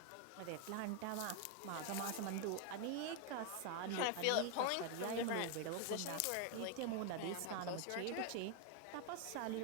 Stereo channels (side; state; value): both; different; correlation 0.01